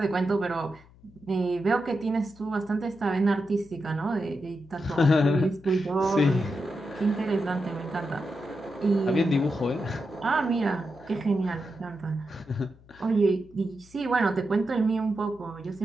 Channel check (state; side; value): noise; left; hum, 25 dB below the sound